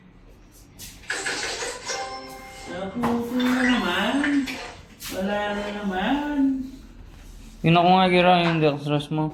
Nabuto na naman. Wala na naman. Yun ako nga gira yung dextrose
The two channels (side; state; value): both; identical; correlation 1.00